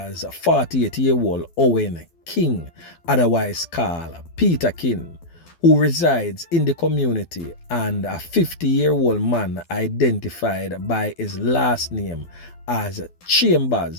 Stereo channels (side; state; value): right; late; 12 ms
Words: 48-year-old Owen King, otherwise called Peterkin, who resides in the community, and a 50-year-old man identified by his last name as